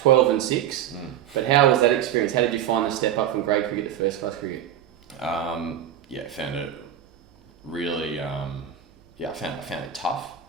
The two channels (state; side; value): quieter; left; 10.2 dB